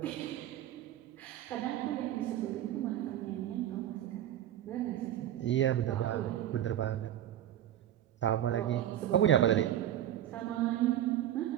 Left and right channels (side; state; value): left; quieter; 11.7 dB